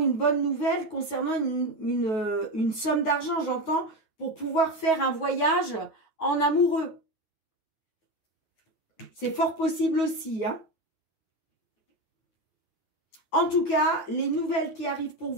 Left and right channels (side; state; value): right; late; 9.4 ms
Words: bonne nouvelle concernant une somme d'argent, j'entends, pour pouvoir faire un voyage en amoureux. C'est fort possible aussi. Hein. En tout cas, les nouvelles qui arrivent pour